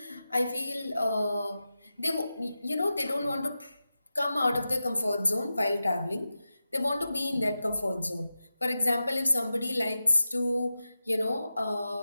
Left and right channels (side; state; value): both; inverted; correlation -0.92